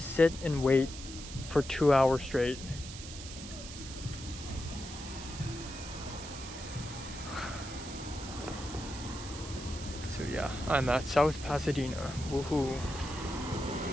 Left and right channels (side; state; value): right; noise; hiss, 12 dB below the sound